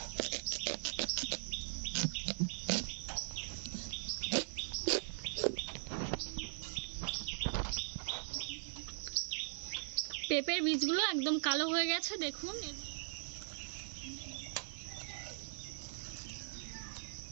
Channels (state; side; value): silent; left; 51 dB below the other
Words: পেঁপের বীজগুলো একদম কালো হয়ে গেছে, দেখুন।